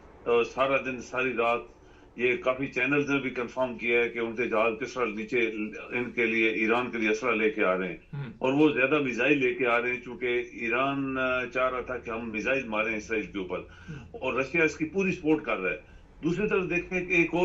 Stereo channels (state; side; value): identical; both; correlation 1.00